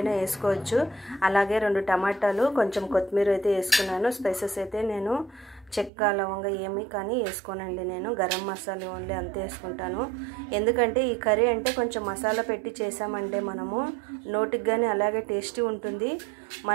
వేసుకోవచ్చు. అలాగే 2 టమాటాలు, కొంచెం కొత్తిమీర అయితే వేసుకున్నాను. స్పైసెస్ అయితే నేను చెక్క లవంగా ఏమి కానీ వేసుకోనండి. నేను గరం మసాలా ఓన్లీ అంతే వేసుకుంటాను. ఎందుకంటే ఈ కర్రీ అంటే కొంచెం మసాలా పెట్టి చేసామంటే మనము నోటికి కానీ అలాగే టేస్టీ ఉంటుంది.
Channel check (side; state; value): left; drops out; at 5.9 s